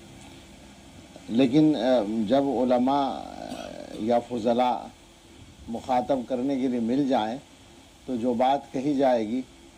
لیکن جب علماء یا فضلاء مخاطب کرنے کے لیے مل جائیں تو جو بات کہی جائے گی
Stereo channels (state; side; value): identical; both; correlation 1.00